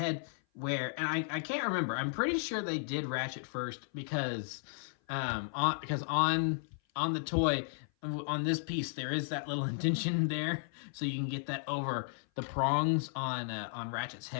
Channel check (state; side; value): silent; right; 55 dB below the other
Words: And I can't remember. I'm pretty sure they did Ratchet first because on the toy, on this piece, there is that little indentation there, so you can get that over the prongs on Ratchet's